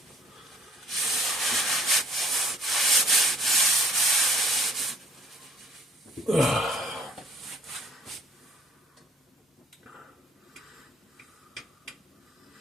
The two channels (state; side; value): normal; both; correlation 0.58